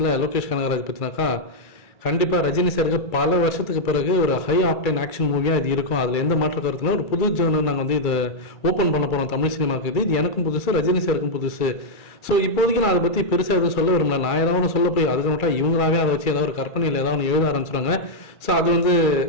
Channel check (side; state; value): right; late; 2.3 ms